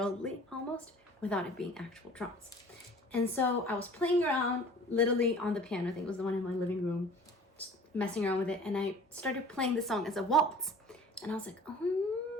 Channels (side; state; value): both; normal; correlation 0.46